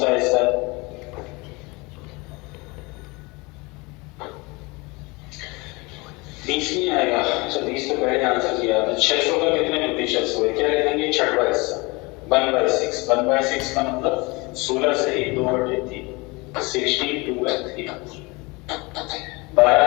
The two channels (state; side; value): quieter; right; 25.7 dB